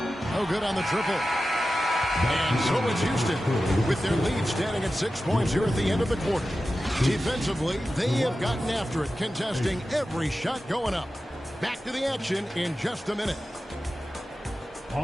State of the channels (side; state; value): both; normal; correlation 0.93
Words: No good on the triple. And so it's Houston with their lead standing at 6 points here at the end of the quarter. Defensively, they have gotten after it, contesting every shot going up. Back to the action in just a minute.